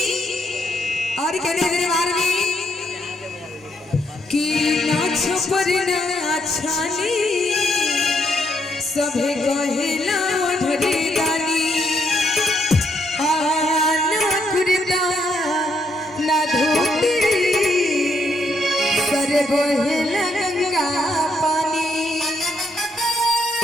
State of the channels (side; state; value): both; normal; correlation 0.75